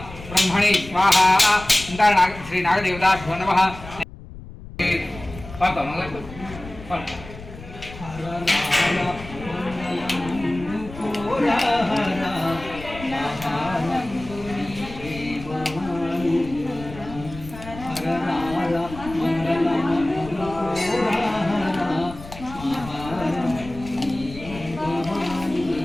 బ్రహ్మణి స్వాహ. శ్రీ నాగదేవతాభ్యో నమః.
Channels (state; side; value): noise; left; rumble, 14 dB below the sound